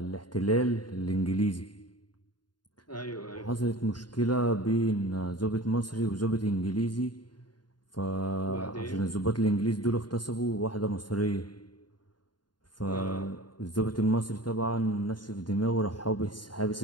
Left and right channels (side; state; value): right; late; 0.71 ms